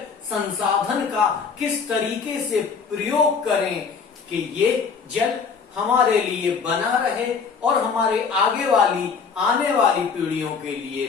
संसाधन का किस तरीके से प्रयोग करें कि ये जल हमारे लिए बना रहे और हमारे आने वाली पीढ़ियों के लिए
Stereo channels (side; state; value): right; quieter; 5.7 dB